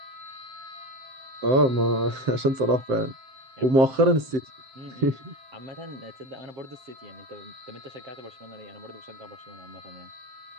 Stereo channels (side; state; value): left; late; 7.6 ms